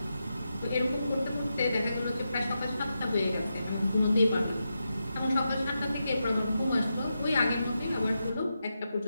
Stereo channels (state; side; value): inverted; both; correlation -0.87